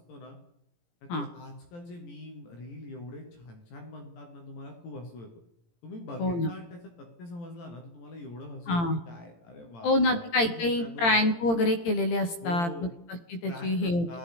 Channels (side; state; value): right; late; 17 ms